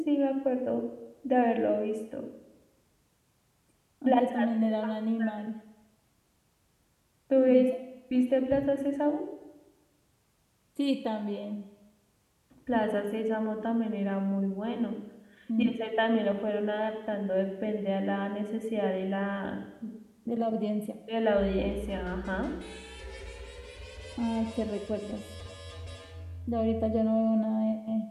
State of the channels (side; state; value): both; identical; correlation 1.00